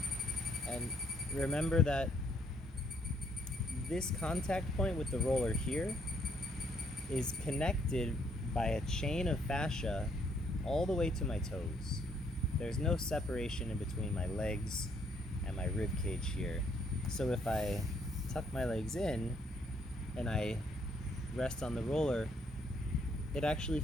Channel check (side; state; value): both; normal; correlation 0.69